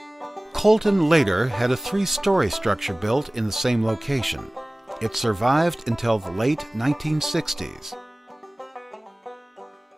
Colton later had a 3-story structure built in the same location. It survived until the late 1960s.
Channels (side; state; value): both; normal; correlation 0.98